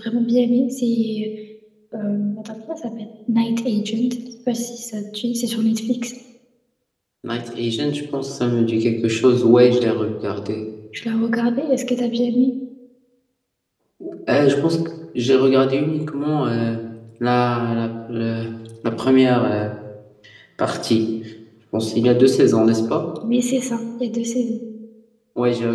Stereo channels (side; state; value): both; identical; correlation 1.00